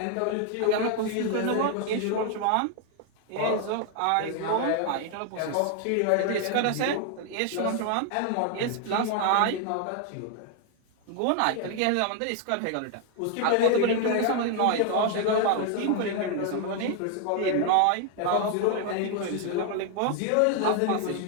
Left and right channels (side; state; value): both; different; correlation 0.00